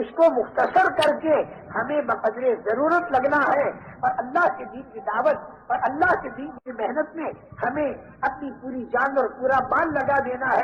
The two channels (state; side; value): identical; both; correlation 1.00